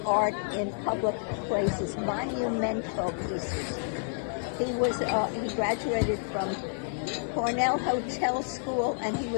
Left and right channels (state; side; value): silent; right; 58 dB below the other